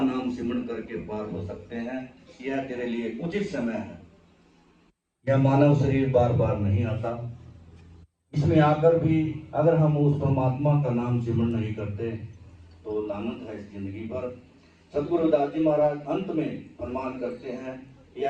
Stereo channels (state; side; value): identical; both; correlation 1.00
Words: नाम सिमरन करके पार हो सकते हैं। यह तेरे लिए उचित समय है। यह मानव शरीर बार बार नहीं आता, इसमें आकर भी अगर हम उस परमात्मा का नाम सिमरन नहीं करते तो लानत है इस जिंदगी पर। सतगुरु रविदास जी महाराज अंत में प्रमाण करते हैं,